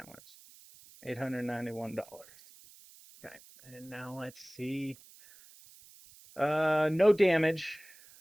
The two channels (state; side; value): noise; right; hiss, 23 dB below the sound